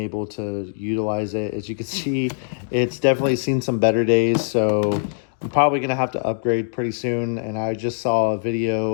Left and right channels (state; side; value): silent; right; digital silence